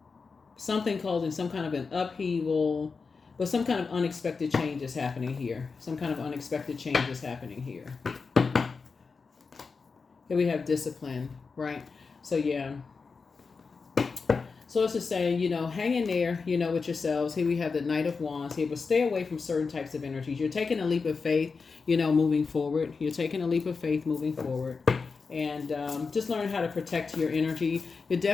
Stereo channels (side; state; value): right; quieter; 4.8 dB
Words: something causing some kind of an upheaval, but some kind of unexpected change is happening here. Some kind of unexpected change is happening here. Here we have discipline, right? So yeah. So it's just saying, hang in there, with yourselves. Here we have the Knight of Wands here, but stay away from certain types of energies. You're taking a leap of faith, moving forward. You're taking a leap of faith moving forward. And just learn how to protect your energy. You're